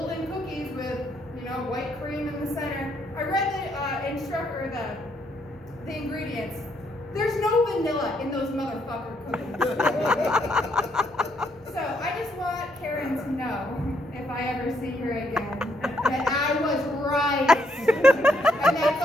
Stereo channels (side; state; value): both; normal; correlation 0.73